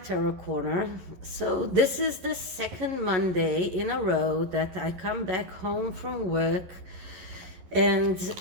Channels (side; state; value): left; late; 11 ms